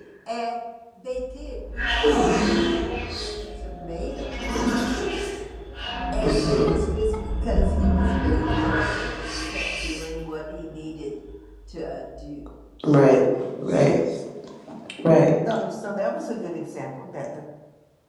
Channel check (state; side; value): identical; both; correlation 1.00